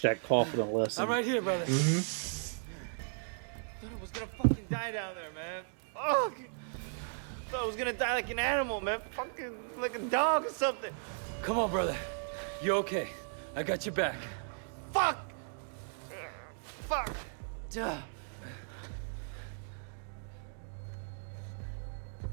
that coffin a lesson. I'm right here, brother. Mm-hmm. Thought I was gonna fucking die down there, man. Fuck. Thought I was gonna die like an animal, man. Fucking like a dog or something. Come on, brother. You're okay. I got your back. Fuck. Duh.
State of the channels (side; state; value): left; silent; digital silence